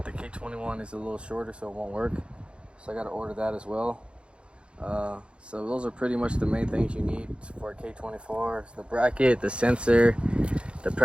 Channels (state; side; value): late; left; 0.057 ms